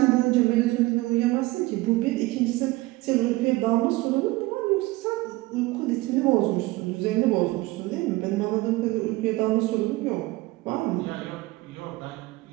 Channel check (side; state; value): left; quieter; 20.4 dB